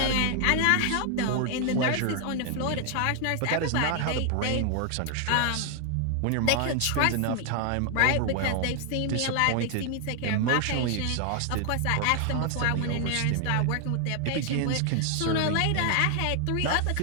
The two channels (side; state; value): both; different; correlation 0.00